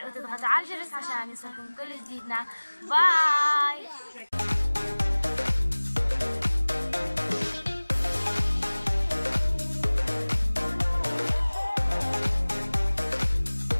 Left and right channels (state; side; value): inverted; both; correlation -1.00